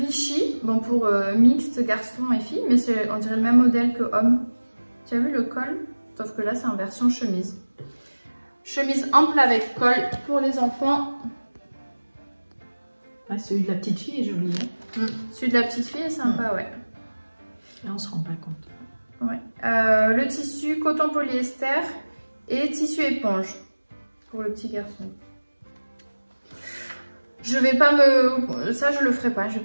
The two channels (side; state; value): both; inverted; correlation -1.00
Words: bon pour mixte garçon et fille, mais on dirait le même modèle que homme. Tu as vu le col? Sauf que là, c'est en version chemise. Chemise ample avec col pour les enfants. Ah, celui de la petite fille est joli. Hein. Celui de la petite fille est sympa, ouais. Là, on se rend pas compte. Ouais. Le tissu coton polyester et tissu éponge pour le petit garçon. Je vais pas ça je le ferai pas, je